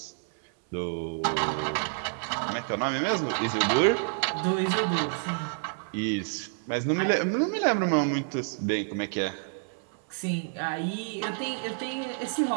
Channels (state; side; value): silent; left; 57 dB below the other